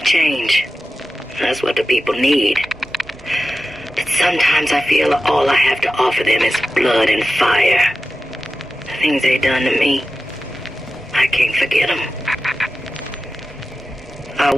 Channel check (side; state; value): both; normal; correlation 0.93